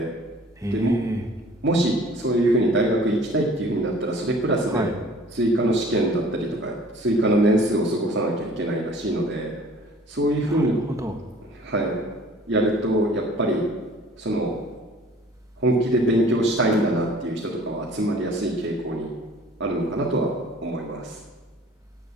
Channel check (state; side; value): normal; both; correlation 0.50